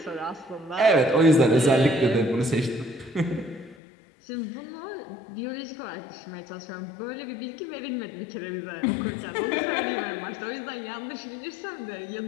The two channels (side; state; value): right; drops out; at 3.8 s